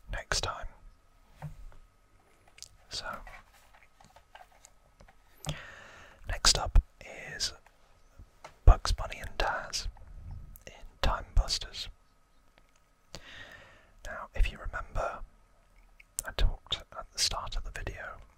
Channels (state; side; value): identical; both; correlation 1.00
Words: next time. So, next up is Bugs Bunny and Taz in Time Busters. Now, if you remember, I talked at the start of the video